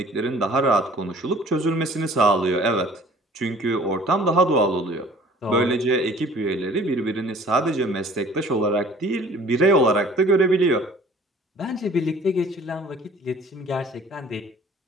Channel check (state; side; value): normal; both; correlation 0.51